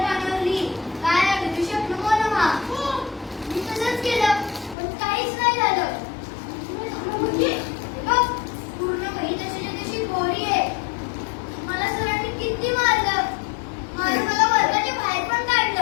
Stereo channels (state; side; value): drops out; right; at 4.8 s